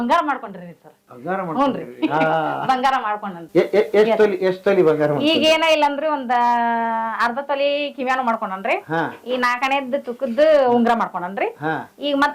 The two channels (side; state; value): both; identical; correlation 1.00